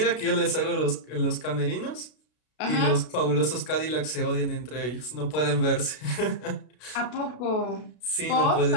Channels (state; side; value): late; right; 32 ms